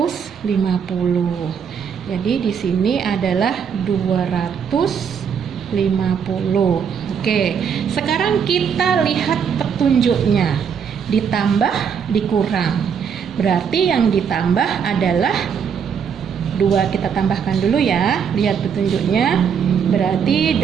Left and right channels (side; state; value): left; quieter; 7.1 dB